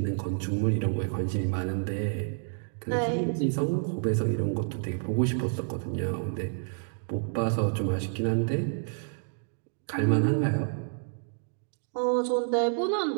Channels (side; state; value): left; silent; digital silence